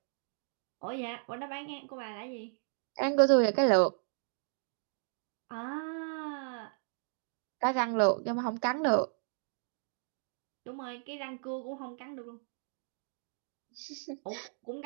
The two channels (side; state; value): left; silent; digital silence